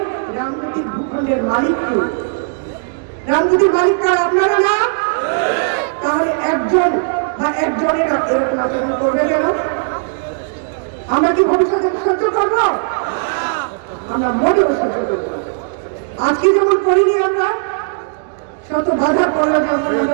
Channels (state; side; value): silent; left; digital silence